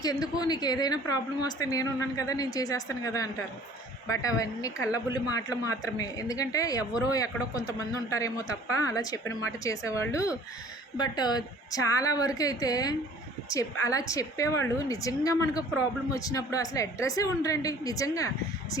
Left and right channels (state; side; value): normal; both; correlation 0.51